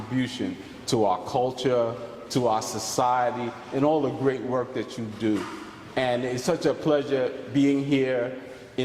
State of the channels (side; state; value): both; identical; correlation 1.00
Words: to our culture, to our society, and all the great work that you do. And it's such a pleasure being here